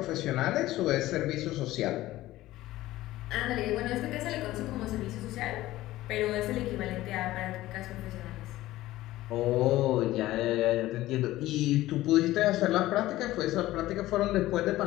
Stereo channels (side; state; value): right; quieter; 16.2 dB